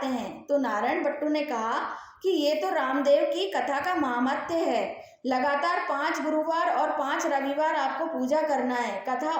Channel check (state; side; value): identical; both; correlation 1.00